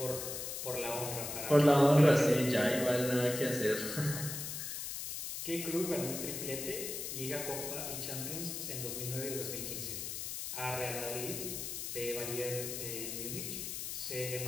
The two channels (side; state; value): left; noise; hiss, 5 dB below the sound